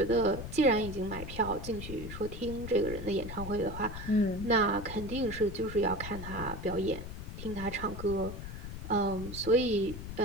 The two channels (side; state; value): left; noise; rumble, 8 dB below the sound